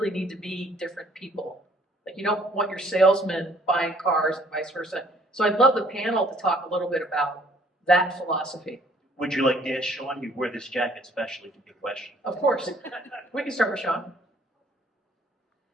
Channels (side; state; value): both; normal; correlation 0.60